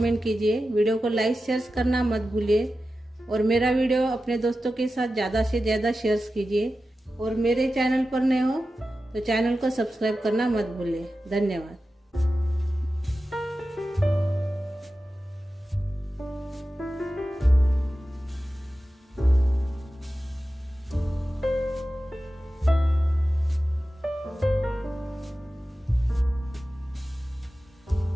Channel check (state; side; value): normal; both; correlation 0.93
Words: कीजिए। वीडियो को लाइक शेयर करना मत भूलिए और मेरा वीडियो अपने दोस्तों के साथ ज़्यादा से ज़्यादा शेयर कीजिए। और मेरे चैनल पर नए हो तो चैनल को सब्सक्राइब करना मत भूलिए। धन्यवाद।